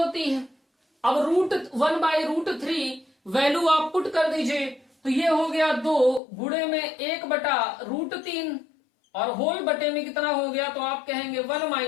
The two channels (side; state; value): right; drops out; at 6.2 s